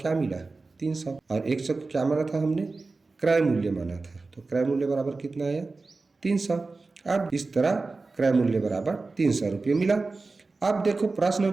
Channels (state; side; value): quieter; left; 3.7 dB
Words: मिला, 300। और 100 को क्या माना था हमने, क्रय मूल्य माना था। तो क्रय मूल्य बराबर कितना आया, 300। अब इस तरह क्रय मूल्य बराबर 300 रुपये मिला। अब देखो प्रश्न